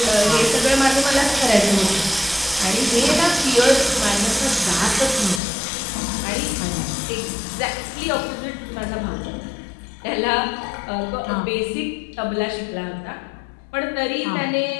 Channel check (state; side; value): drops out; right; at 5.4 s